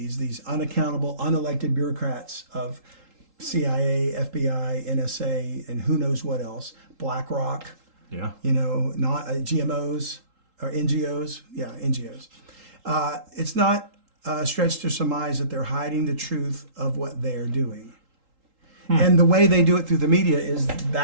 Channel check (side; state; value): left; late; 3.8 ms